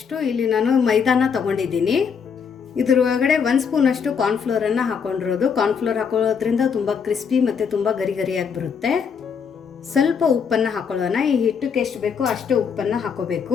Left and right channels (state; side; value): quieter; right; 6.5 dB